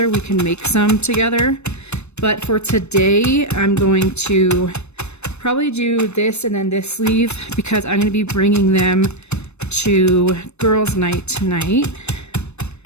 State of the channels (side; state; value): right; late; 0.81 ms